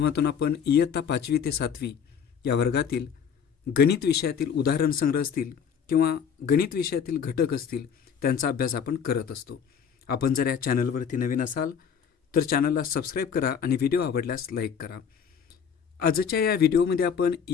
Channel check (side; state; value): right; quieter; 7.3 dB